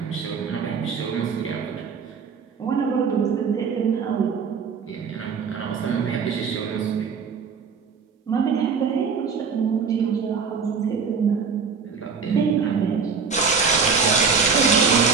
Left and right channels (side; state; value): left; quieter; 5.5 dB